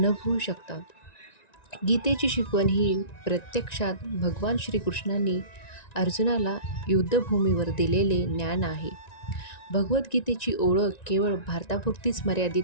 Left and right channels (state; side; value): late; right; 1.9 ms